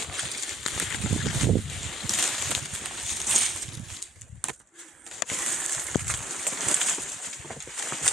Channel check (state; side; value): normal; both; correlation 0.62